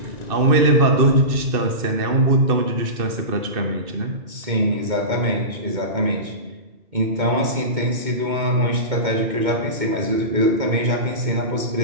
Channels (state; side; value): late; left; 2.2 ms